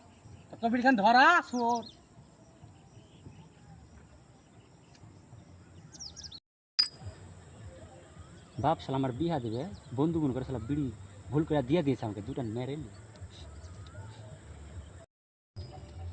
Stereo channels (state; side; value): identical; both; correlation 1.00